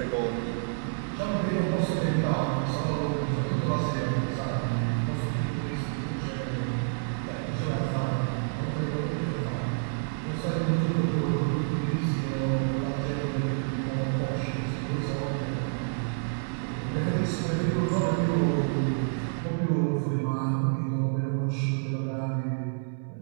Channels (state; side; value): silent; left; 59 dB below the other